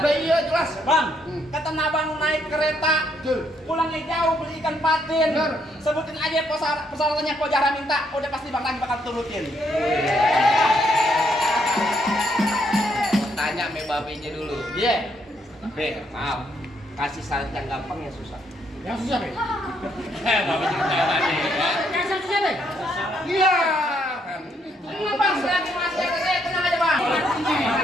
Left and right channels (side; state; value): both; normal; correlation 0.73